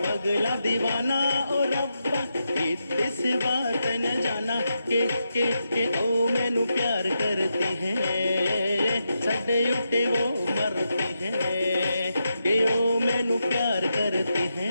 दीवाना ओ रब्बा इस बात न जाना के ओ मैनू प्यार करती है सड़े उठे वो मरती है के ओ मैनू प्यार करती है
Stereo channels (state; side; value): inverted; both; correlation -0.85